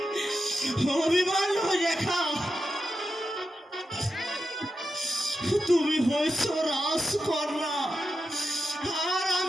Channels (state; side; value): normal; both; correlation 0.90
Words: অভিমান রেখা, তুমি হয়েছ রাজকন্যা আর